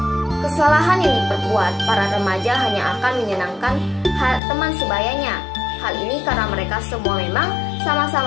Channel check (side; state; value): right; drops out; at 4.4 s